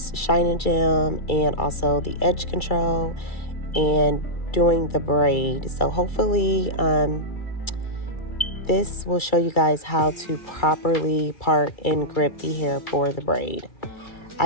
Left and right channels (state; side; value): late; right; 2.3 ms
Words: shine and gem and also the edge control and doing the braid. So hopefully this will show you guys how to properly part and grip the hair for the braid.